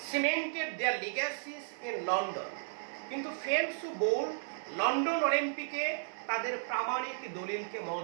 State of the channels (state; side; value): silent; left; digital silence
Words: cemented their legacies in London, কিন্তু ফেলপস ও বোল্ট লন্ডন অলিম্পিকে তাদের প্রামাণিক দলিলকে